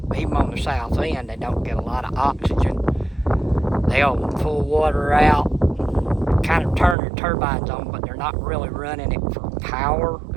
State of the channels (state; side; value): drops out; left; at 7.0 s